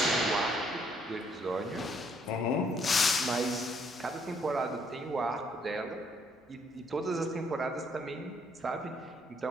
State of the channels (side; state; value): both; normal; correlation 0.68